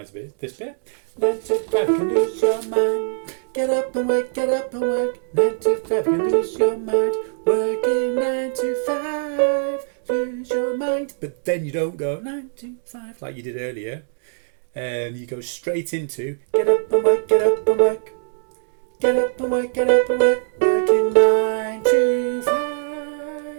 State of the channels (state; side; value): silent; left; digital silence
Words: this bit. 9 to 5 can lose your mind, get up and work, 9 to 5 can lose your mind, working 9 to 5. Lose your mind, but then you don't go 9 to 5 like you did earlier. You go straight into get up and work, working